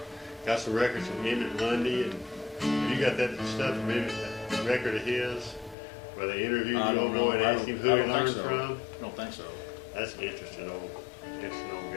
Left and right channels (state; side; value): drops out; right; at 5.8 s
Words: got some records from Emmett Lundy, and you got that stuff from Emmett, that record of his, where they interviewed I the don't old know. boy and I asked him don't- who I he don't think learned so. from. I don't think so. That's an interesting old